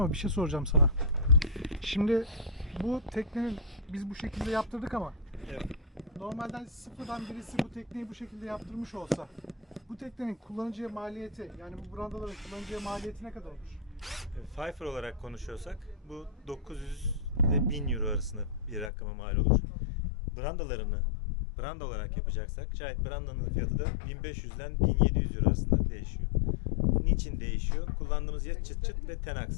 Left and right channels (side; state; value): right; drops out; at 18.9 s